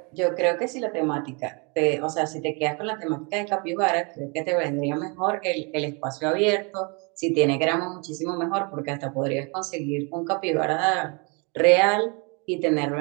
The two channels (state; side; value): quieter; left; 32.3 dB